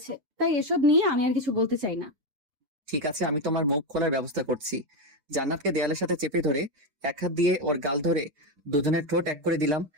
তাই এসব নিয়ে আমি আর কিছু বলতে চাই না। ঠিক আছে, আমি তোমার মুখ খোলার ব্যবস্থা করছি। জান্নাতকে দেয়ালের সাথে চেপে ধরে এক হাত দিয়ে ওর গাল ধরে দুজনের ঠোঁট এক করে দিলাম।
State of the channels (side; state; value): left; late; 6.9 ms